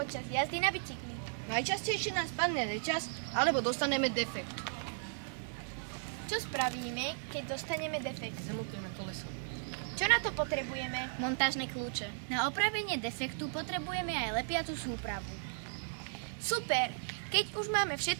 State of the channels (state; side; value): silent; left; digital silence